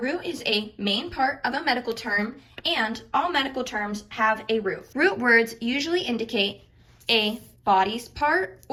is a main part of a medical term, and all medical terms have a root. Root words usually indicate a body's part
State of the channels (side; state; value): both; identical; correlation 1.00